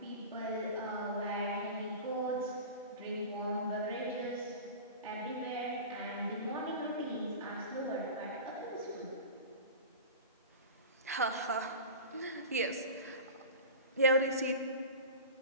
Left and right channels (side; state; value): both; inverted; correlation -0.32